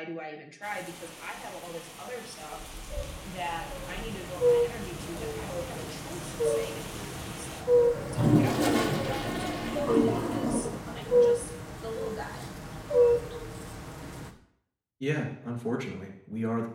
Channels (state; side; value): identical; both; correlation 1.00